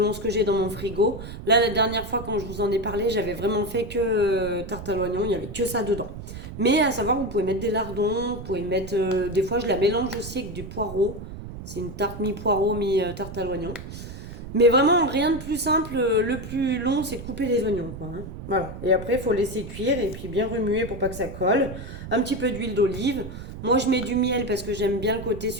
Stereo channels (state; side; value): noise; right; rumble, 11 dB below the sound